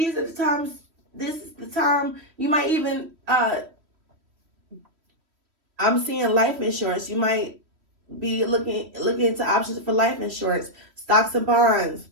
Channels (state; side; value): late; left; 3.1 ms